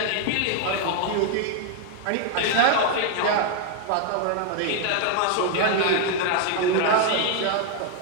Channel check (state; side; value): different; both; correlation 0.00